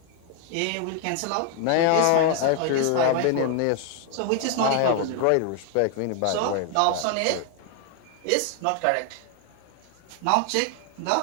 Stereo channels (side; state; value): both; different; correlation 0.00